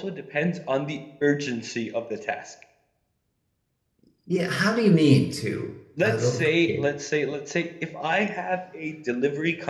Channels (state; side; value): identical; both; correlation 1.00